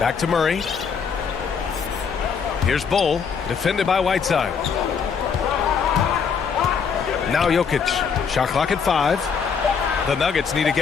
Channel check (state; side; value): quieter; right; 6.3 dB